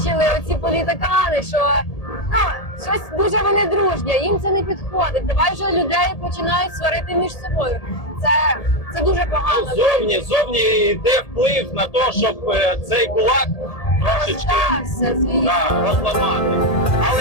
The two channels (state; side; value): late; right; 1.8 ms